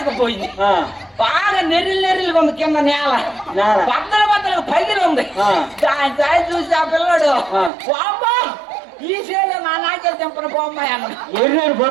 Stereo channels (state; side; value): drops out; left; at 7.7 s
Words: బాగా నెర్రిగా ఉంది కింద నేల, బద్దలు పగిలి ఉంది. దాని చూసి ఆ పిల్లడు బాబా ఈ చేలో నా నాకెళ్ళి తెంపన పోమ్మాయి అన్నాడు.